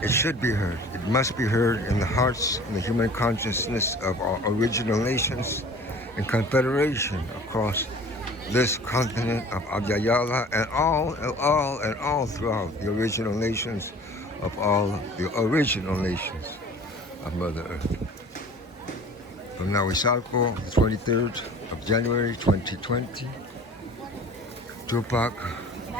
It should be heard. It must be heard in the hearts and the human consciousness of our original nations and confederation across this continent of Abyayala and all throughout the original nations of all the original nations of Mother Earth. From Nahuizalco, the 23rd of January 2020, Tupac,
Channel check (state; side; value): normal; both; correlation 0.46